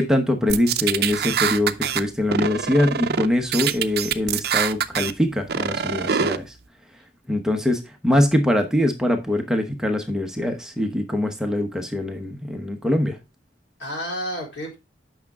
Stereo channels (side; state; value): both; normal; correlation 0.69